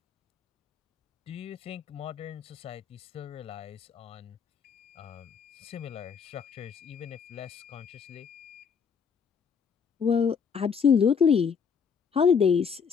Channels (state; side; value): quieter; right; 6.5 dB